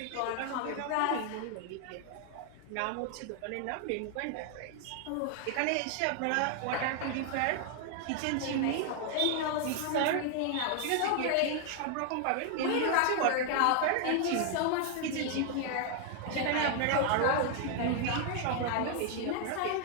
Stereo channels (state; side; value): different; both; correlation 0.00